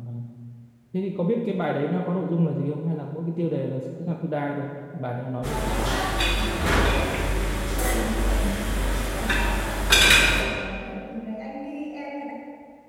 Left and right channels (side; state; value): both; identical; correlation 1.00